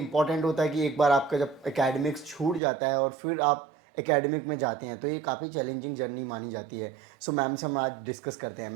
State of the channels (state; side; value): drops out; left; at 2.6 s